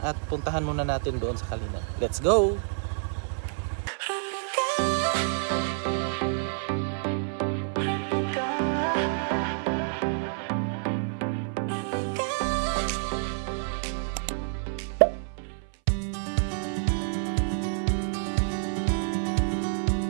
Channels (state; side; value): silent; left; 58 dB below the other